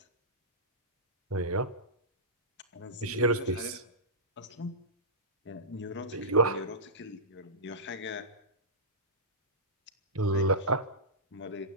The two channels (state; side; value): normal; both; correlation -0.18